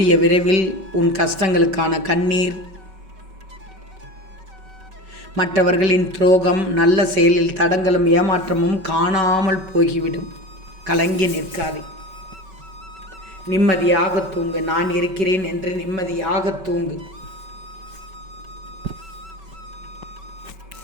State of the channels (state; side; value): late; left; 5.3 ms